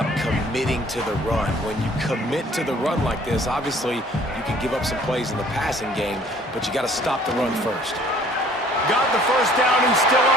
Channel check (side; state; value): both; normal; correlation 0.56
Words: committing to the run. When you commit to the run like this, obviously you can give up some plays in the passing game, but you got to stop the run first. Got the 1st down and still